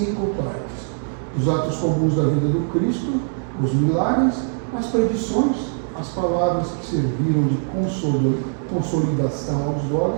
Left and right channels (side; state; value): left; silent; digital silence